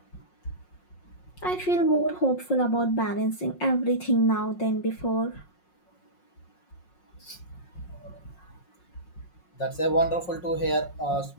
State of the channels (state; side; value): late; right; 5.5 ms